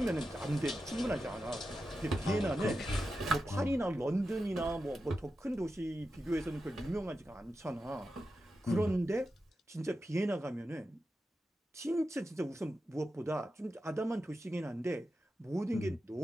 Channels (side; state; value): both; normal; correlation 0.90